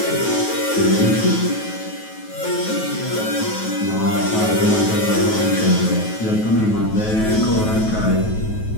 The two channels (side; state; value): right; late; 9.3 ms